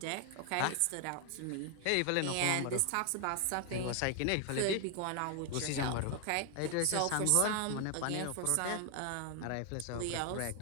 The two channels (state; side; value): different; both; correlation 0.00